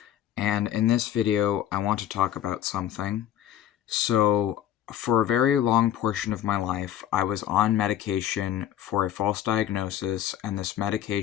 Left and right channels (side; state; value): right; quieter; 11.3 dB